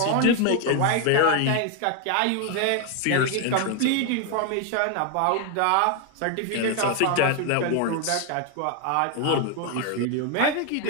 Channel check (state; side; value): different; both; correlation 0.01